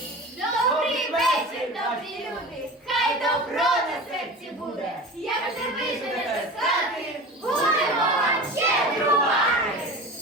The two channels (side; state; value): both; normal; correlation 0.33